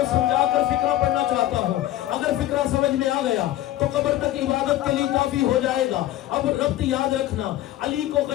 سمجھا کر فکرہ پڑھنا چاہتا ہوں. اگر فکرہ سمجھ میں آ گیا تو قبر تک عبادت کے لیے کافی ہو جائے گا. اب ربط یاد رکھنا، علی کو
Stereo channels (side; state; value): right; quieter; 14.2 dB